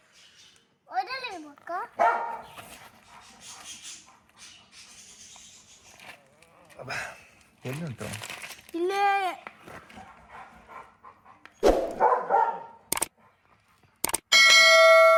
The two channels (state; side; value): identical; both; correlation 1.00